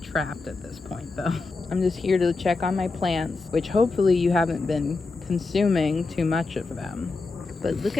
trapped at this point though. I'm just here to check on my plants, which hopefully you haven't been consuming too much of them. But look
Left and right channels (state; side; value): quieter; right; 3.8 dB